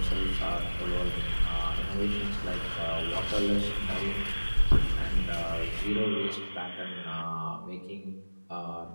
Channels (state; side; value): inverted; both; correlation -1.00